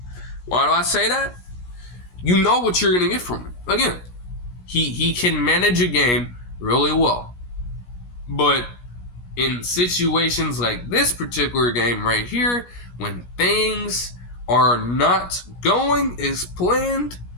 Why do I say that? You know what you're going to get from him. Again, he can manage a game really well. But in situations like this particular game right here, when things are not going as planned,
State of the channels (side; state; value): right; late; 17 ms